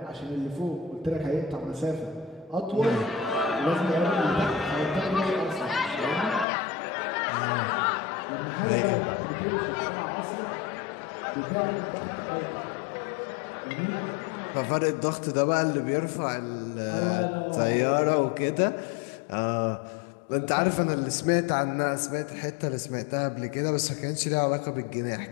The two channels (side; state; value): right; drops out; at 6.5 s